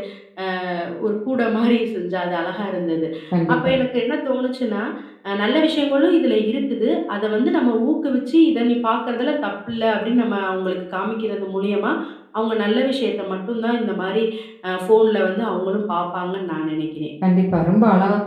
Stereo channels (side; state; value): both; identical; correlation 1.00